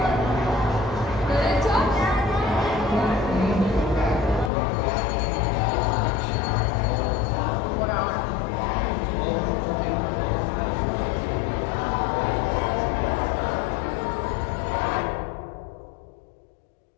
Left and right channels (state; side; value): drops out; right; at 4.5 s